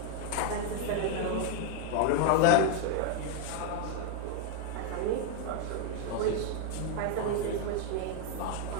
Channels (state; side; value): different; both; correlation 0.00